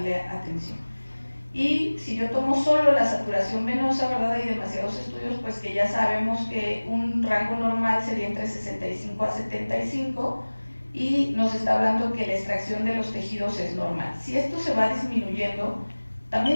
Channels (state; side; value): inverted; both; correlation -1.00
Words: atención. Y si yo tomo solo la saturación venosa, ¿verdad?, hay demasiados estudios, pues que ya sabemos que un rango normal sería entre 65 a 75 y nos está hablando que la extracción de los tejidos es normal. Si esto se va disminuyendo,